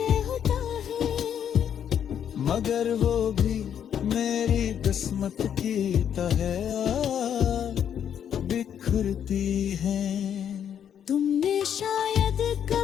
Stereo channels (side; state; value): right; quieter; 8.9 dB